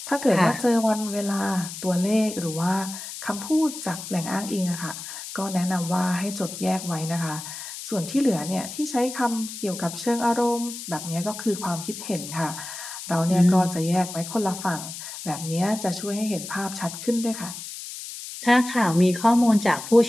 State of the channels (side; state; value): left; noise; hiss, 10 dB below the sound